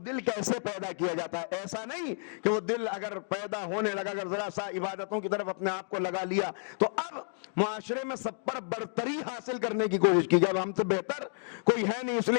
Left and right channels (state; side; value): silent; right; digital silence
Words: کیسے پیدا کیا جاتا ہے۔ ایسا نہیں کہ وہ دل اگر پیدا ہونے لگا، اگر ذرا سا عبادتوں کی طرف اپنے آپ کو لگا لیا تو اب معاشرے میں سب پر برتری حاصل کرنے کی کوشش کی جائے، ہم سے بہتر کوئی ہے نہیں اس لیے